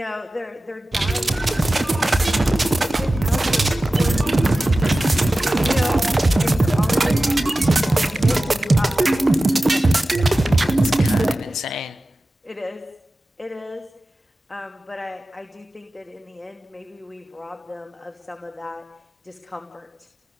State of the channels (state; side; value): normal; both; correlation 0.95